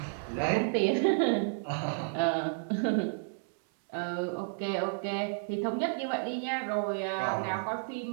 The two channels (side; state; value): left; silent; 57 dB below the other